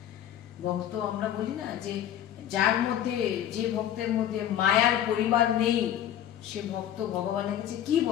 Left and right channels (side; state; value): right; quieter; 10.9 dB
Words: ভক্ত আমরা বলি না যে যার মধ্যে, যে ভক্তের মধ্যে মায়ার পরিবার নেই সে ভক্ত ভগবানের কাছে কি